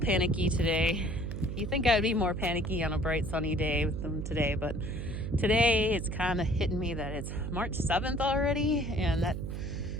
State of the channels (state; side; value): noise; right; hum, 5 dB below the sound